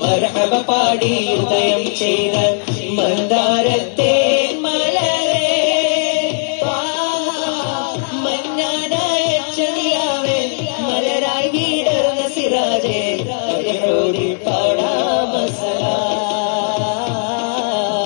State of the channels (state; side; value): silent; right; digital silence